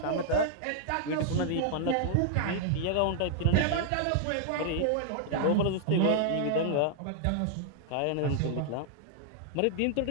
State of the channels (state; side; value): different; both; correlation -0.01